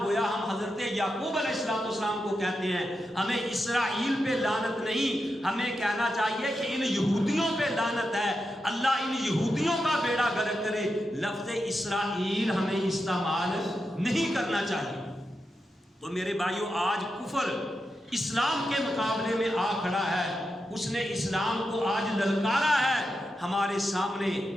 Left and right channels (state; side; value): normal; both; correlation 0.88